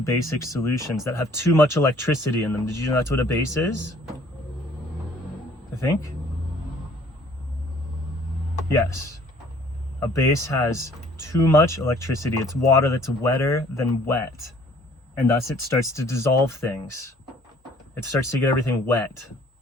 solutions that have too much electricity in them. Did you know that's what a base is? I think. Yes. A base has too much electricity. It's water that's wetter than wet. And thus it starts to dissolve things. It starts to get everything wet.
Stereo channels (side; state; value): both; normal; correlation 0.56